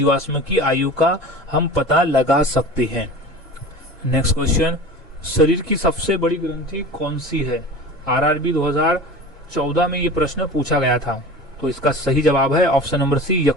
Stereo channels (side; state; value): both; normal; correlation 0.36